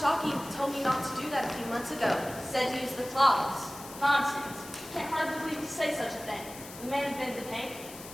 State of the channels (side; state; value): left; noise; hiss, 15 dB below the sound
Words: told me not to do that a few months ago. Said to use the cloths. Nonsense. Can't hardly believe you say such a thing. We may have been the paint.